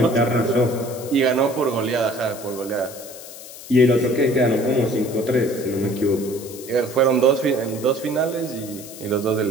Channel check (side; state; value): left; noise; hiss, 15 dB below the sound